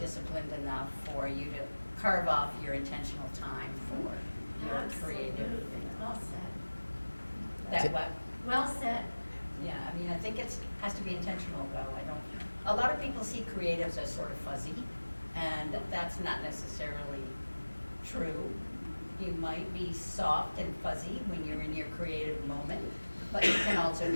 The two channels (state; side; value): inverted; both; correlation -1.00